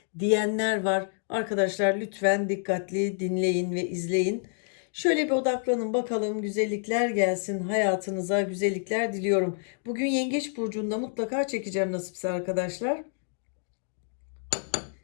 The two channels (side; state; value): right; silent; digital silence